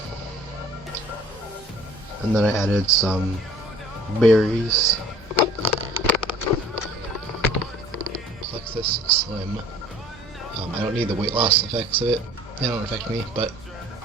And then I added some berries. Plexus Slim. I don't need the weight loss effects of it. They don't affect me, but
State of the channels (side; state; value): both; normal; correlation 0.50